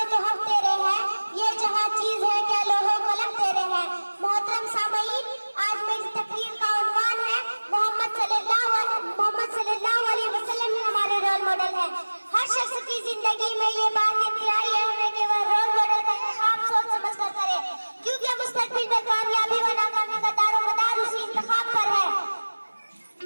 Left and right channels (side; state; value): both; inverted; correlation -1.00